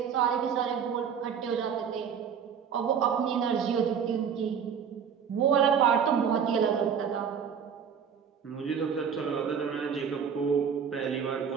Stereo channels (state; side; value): quieter; left; 7.3 dB